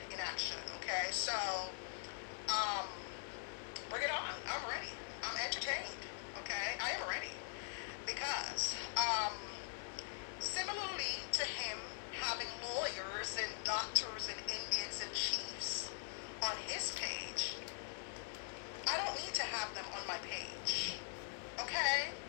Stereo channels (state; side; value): silent; right; digital silence